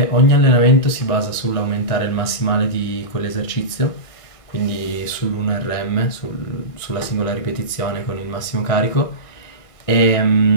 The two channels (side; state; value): right; late; 1.6 ms